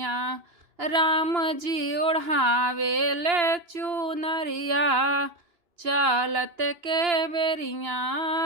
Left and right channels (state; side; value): late; left; 2.9 ms